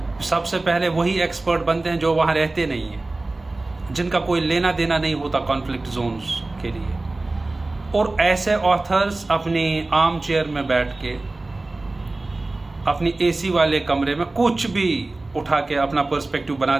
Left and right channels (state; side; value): quieter; left; 3.1 dB